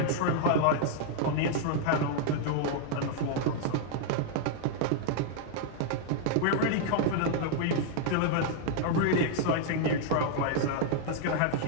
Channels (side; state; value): both; different; correlation -0.01